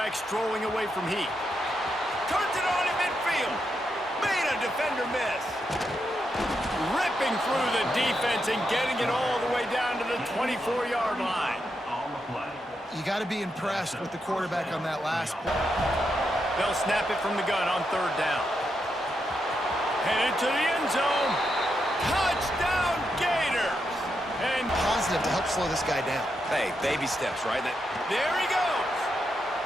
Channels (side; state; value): both; normal; correlation 0.83